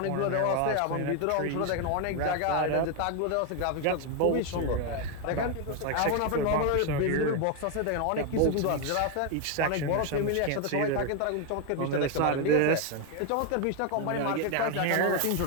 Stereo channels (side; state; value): both; different; correlation 0.01